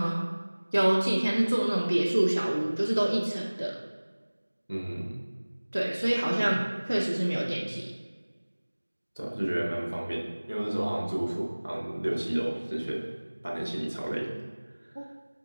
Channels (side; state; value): both; inverted; correlation -1.00